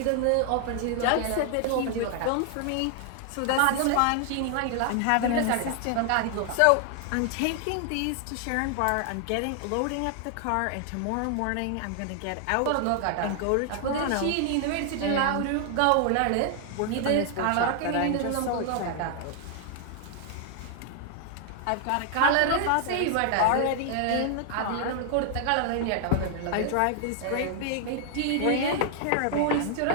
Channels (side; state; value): both; different; correlation 0.00